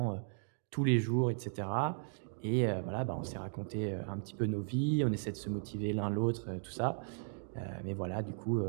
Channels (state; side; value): silent; left; digital silence